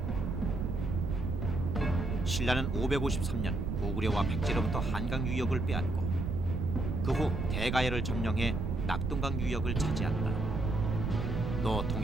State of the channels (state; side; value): noise; right; rumble, 1 dB below the sound